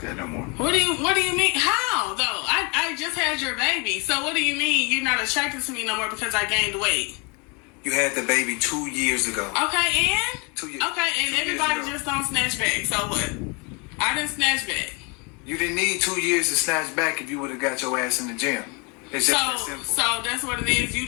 that no more. What do you mean? How though? I just had your baby, so what do you mean you're not attracted to me no more because I gained weight? You had the baby 2 years ago. Okay, and 2 years. Okay, and everybody just don't snatch back. So what? I didn't snatch back. You didn't need 2 years to snatch back if you would have got your ass in the gym. It's just that simple. So that's what it is. You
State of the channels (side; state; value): right; quieter; 31.7 dB